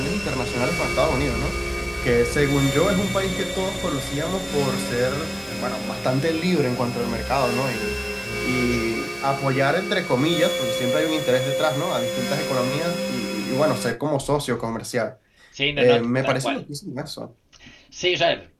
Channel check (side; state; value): both; identical; correlation 1.00